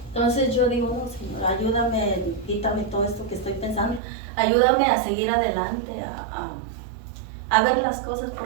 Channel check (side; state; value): left; drops out; at 4.0 s